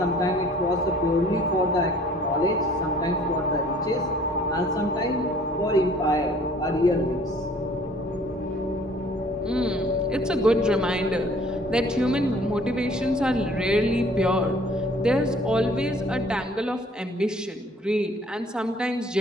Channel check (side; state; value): both; normal; correlation 0.55